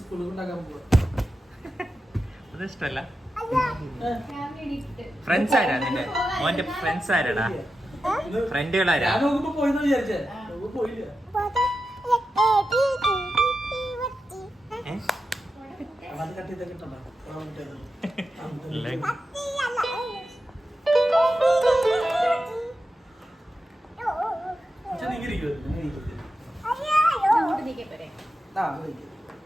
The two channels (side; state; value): both; normal; correlation 0.90